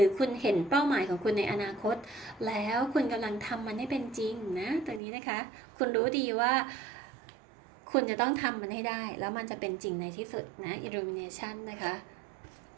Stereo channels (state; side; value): drops out; left; at 5.0 s